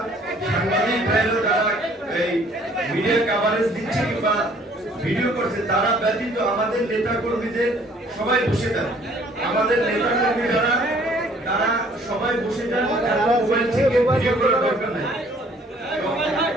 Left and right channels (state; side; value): normal; both; correlation 0.58